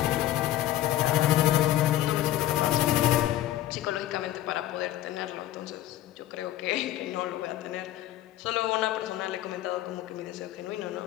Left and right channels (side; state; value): right; quieter; 13.6 dB